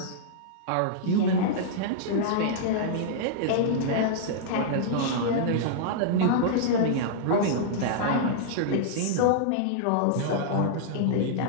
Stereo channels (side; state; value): both; different; correlation -0.02